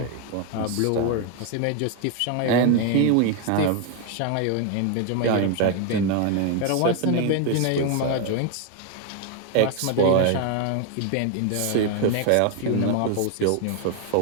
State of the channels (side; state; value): both; different; correlation 0.01